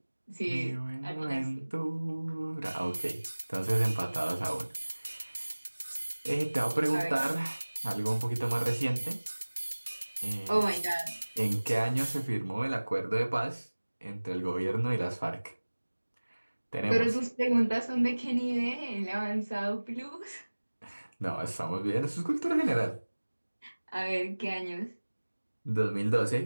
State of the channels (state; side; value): inverted; both; correlation -1.00